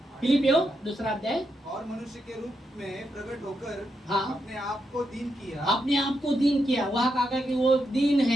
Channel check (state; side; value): normal; both; correlation 0.83